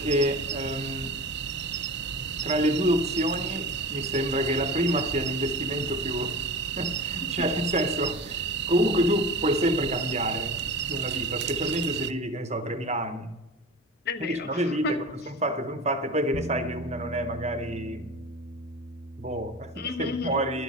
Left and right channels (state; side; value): normal; both; correlation 0.32